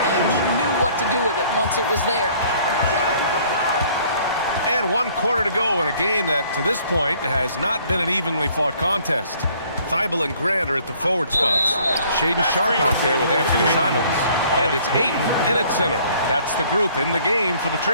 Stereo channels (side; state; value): both; inverted; correlation -0.58